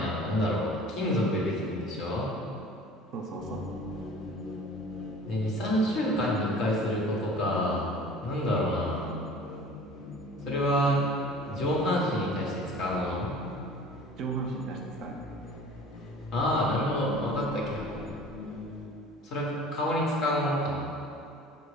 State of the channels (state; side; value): normal; both; correlation 0.45